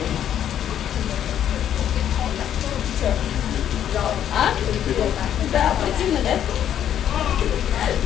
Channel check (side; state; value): right; quieter; 10.2 dB